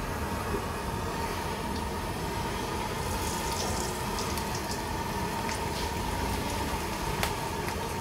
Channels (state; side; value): identical; both; correlation 1.00